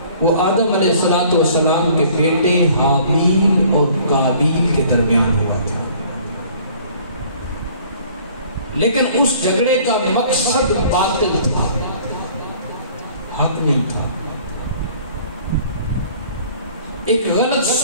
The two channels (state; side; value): inverted; both; correlation -0.53